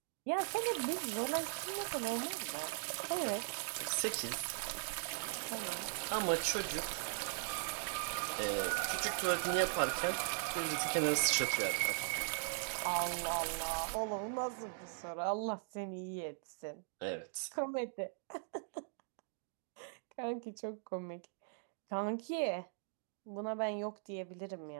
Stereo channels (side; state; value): left; silent; digital silence